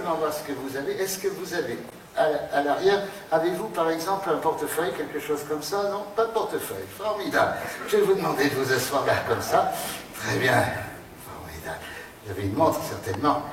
voir ce que vous avez. Est-ce que vous avez, à l'arrière, avez-vous par exemple un portefeuille, quelque chose comme ça? Non, pas de portefeuille. Formidable. Je vais vous demander de vous asseoir là, comme ça. Très bien. Formidable. Vous avez une montre, certainement.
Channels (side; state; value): both; identical; correlation 1.00